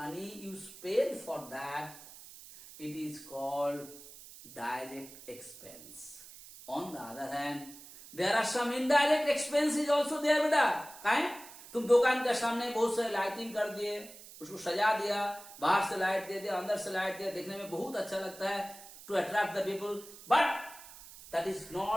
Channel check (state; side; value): noise; right; hiss, 17 dB below the sound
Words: you spend for that, it is called direct expense. On the other hand, there are some indirect expenses also there बेटा. काहे? तुम दुकान के सामने बहुत सारे lighting कर दिए, उसको सजा दिया, बाहर से लाइट दे दिया, अंदर से लाइट दिया, देखने में बहुत अच्छा लगता है, to attract the people, but that is